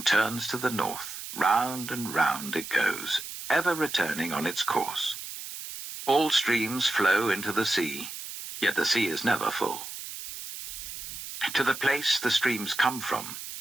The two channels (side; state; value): right; noise; hiss, 9 dB below the sound